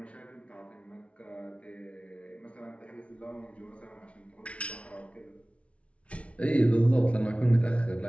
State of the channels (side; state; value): right; late; 0.062 ms